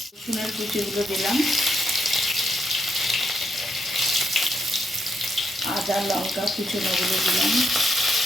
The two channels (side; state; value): both; normal; correlation 0.79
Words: রসুনের কুচিগুলো দিলাম, আদা লঙ্কা কুচোনোগুলো দিলাম,